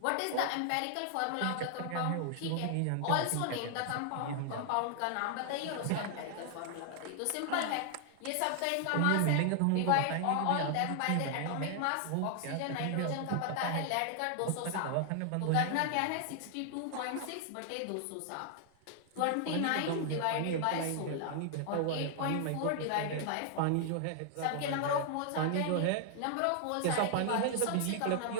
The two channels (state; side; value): different; both; correlation 0.00